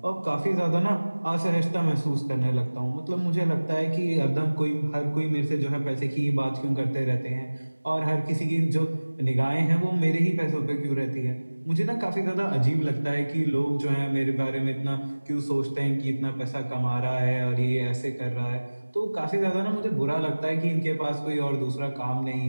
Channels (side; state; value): both; inverted; correlation -1.00